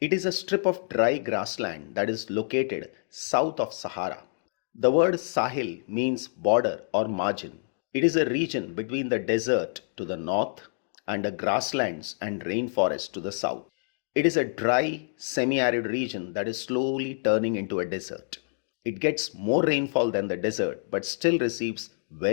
it is a strip of dry grassland that is located south of Sahara. The word Sahel means border or margin. It is a region between the desert to the north and the grasslands and rainforest to the south. It is a dry, semi arid region that is slowly turning into a desert. It gets more rainfall than the desert but still receives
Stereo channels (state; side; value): silent; right; digital silence